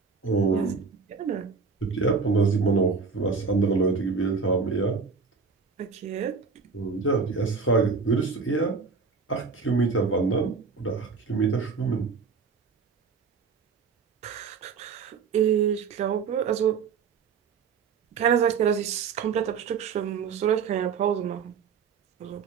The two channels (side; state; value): left; quieter; 5.3 dB